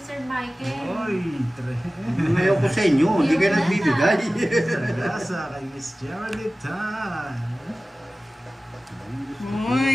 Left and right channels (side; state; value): both; normal; correlation 0.97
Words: Michael. Oy, Ngayon ko sa inyo, hindi kayo nagbibigay. Sagasa kay Miss Geraldine Tan.